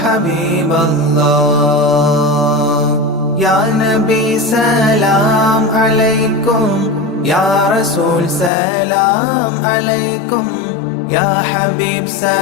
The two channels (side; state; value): right; drops out; at 8.5 s